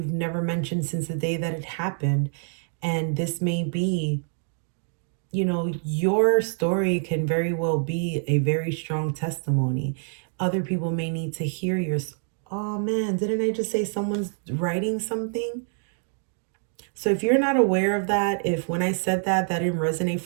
never mentioned since the day that it happened. And this may be, your story can very well be a very strong testimony. Other people may need to hear yours. Oh man, didn't I just say someone's writing something? So if you're not aware of that, if when I said that didn't resonate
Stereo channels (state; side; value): silent; left; 61 dB below the other